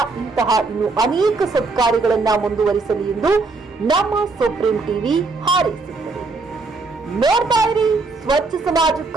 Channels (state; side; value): quieter; left; 3.8 dB